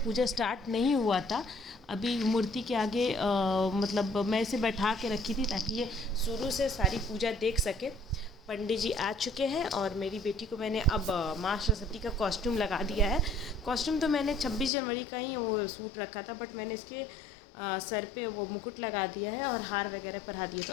पूजा स्टार्ट नहीं हुआ था। अभी मूर्ति के आगे मैं इसे बैठा के रखी थी ताकि ये शुरू से सारी पूजा देख सके। पंडित जी आ चुके हैं और मेरी बेटी को मैंने अब माँ सरस्वती का कॉस्ट्यूम लगा दिया है। कॉस्ट्यूम तो मैंने 26 जनवरी का ही वो सूट रखा था, बट मैंने इसके सर पे वो मुकुट लगा दिया है और हार वगैरह पहना दिए। तो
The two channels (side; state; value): right; drops out; at 14.7 s